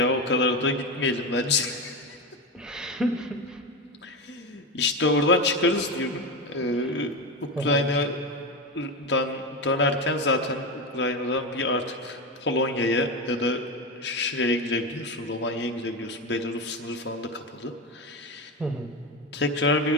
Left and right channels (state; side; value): normal; both; correlation 0.17